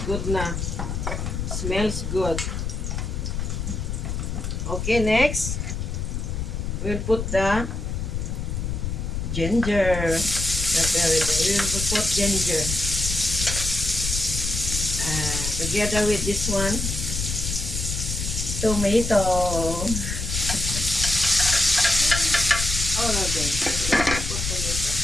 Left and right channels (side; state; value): left; noise; rumble, 3 dB below the sound